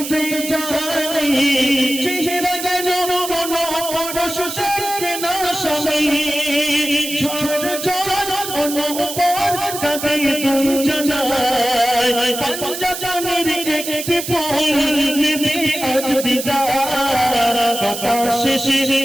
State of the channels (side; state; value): right; noise; hiss, 7 dB below the sound